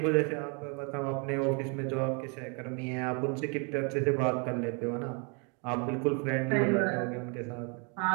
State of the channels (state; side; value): quieter; left; 34.8 dB